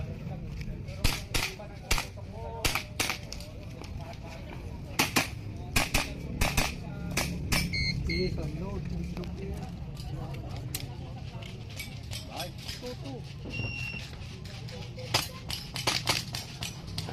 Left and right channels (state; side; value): identical; both; correlation 1.00